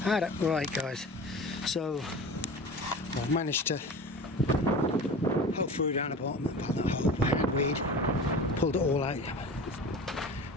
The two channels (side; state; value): both; normal; correlation 0.35